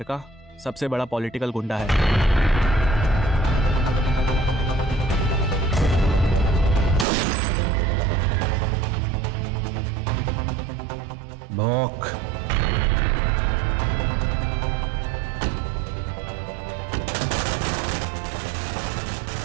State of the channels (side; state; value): left; drops out; at 7.1 s